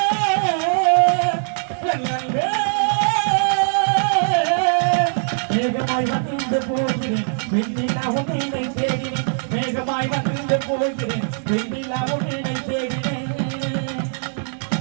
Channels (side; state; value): left; silent; digital silence